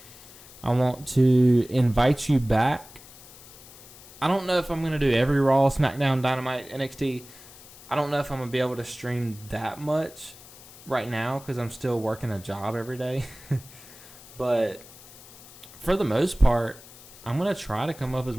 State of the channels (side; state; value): left; noise; hiss, 20 dB below the sound